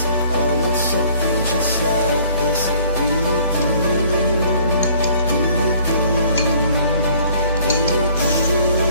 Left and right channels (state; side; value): inverted; both; correlation -0.56